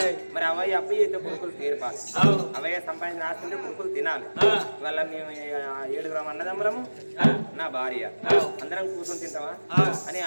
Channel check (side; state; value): both; inverted; correlation -1.00